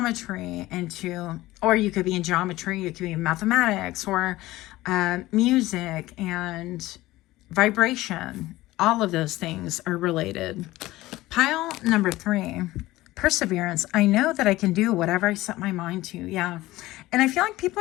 or you could be in geometry, you could be in mathematics, or music and vibration. All of those things are related. Pile number 3, perseverance. I know that I can do whatever I set my mind to. Yeah. And I feel like people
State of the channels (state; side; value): quieter; right; 17.6 dB